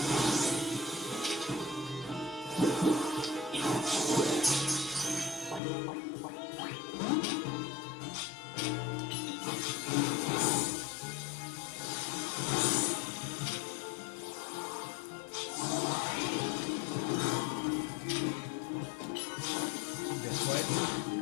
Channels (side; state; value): right; drops out; at 5.6 s